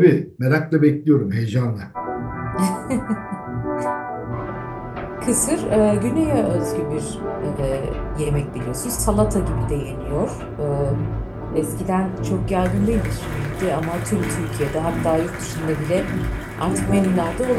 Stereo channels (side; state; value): both; identical; correlation 1.00